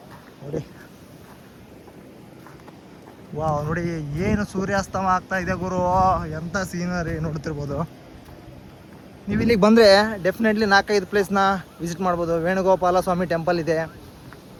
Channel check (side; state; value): both; identical; correlation 1.00